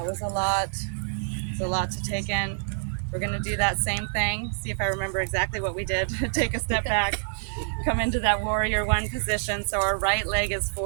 was a lot. It's a lot to take in. We're gonna do that same thing. See if I remember exactly what we did. Take a step back. Come into that warrior one position. So our right leg is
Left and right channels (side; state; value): left; silent; digital silence